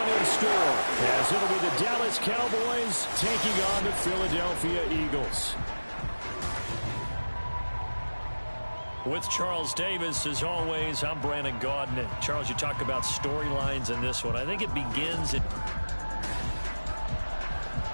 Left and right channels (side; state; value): both; inverted; correlation -1.00